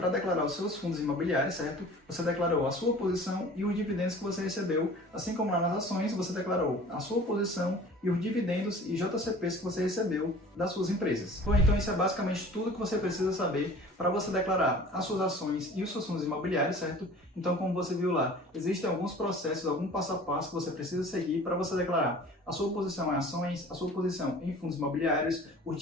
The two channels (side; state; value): both; normal; correlation 0.44